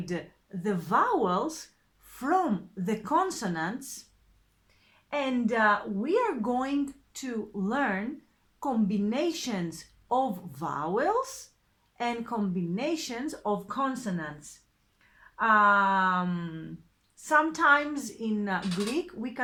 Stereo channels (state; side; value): identical; both; correlation 1.00